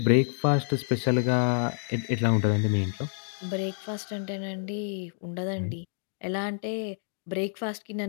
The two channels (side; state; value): right; silent; 59 dB below the other